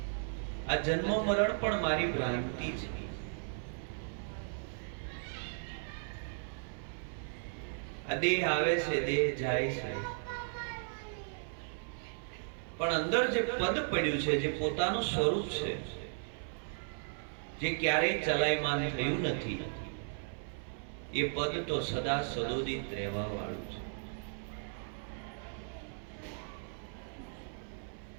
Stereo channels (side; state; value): left; silent; 54 dB below the other